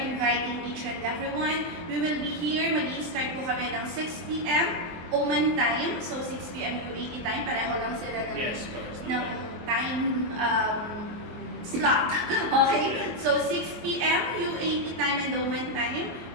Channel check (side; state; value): left; late; 23 ms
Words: each and everyone. We will be here. Mag-i-start po kami ng 6 p.m. Oman time. So, 6 p.m. UAE time. Pareho lang sila ng time slot. Okay? Yes. So, 6 p.m. UAE time and Oman time.